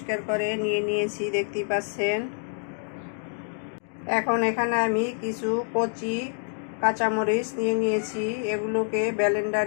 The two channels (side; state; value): right; silent; 59 dB below the other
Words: করে নিয়ে নিয়েছি, দেখতেই পাচ্ছেন। এখন এখানে আমি কিছু কচি কাঁচামরিচ নিয়ে নিয়েছি, এগুলোকে